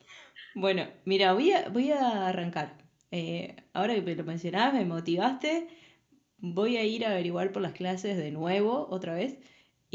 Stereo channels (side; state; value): both; identical; correlation 1.00